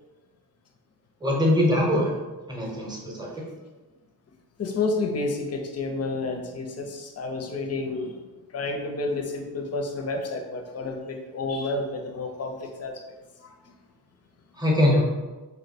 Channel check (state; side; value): normal; both; correlation 0.46